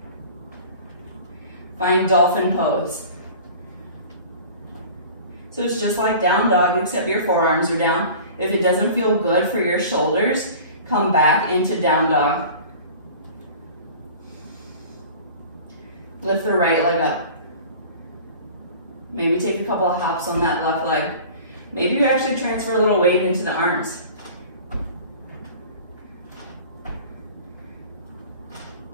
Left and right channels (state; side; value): inverted; both; correlation -0.42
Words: Find dolphin pose. So it's just like down dog, except your forearms are down. If it doesn't feel good for your shoulders, come back into down dog. Lift the right leg up. Maybe take a couple of hops on that left leg. Maybe you actually transfer a little weight into the arms.